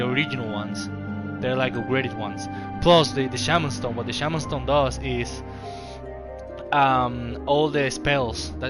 original ones. They're like upgraded ones. Plus the Shaman Stone. What the Shaman Stone does is all the spells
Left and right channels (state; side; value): identical; both; correlation 1.00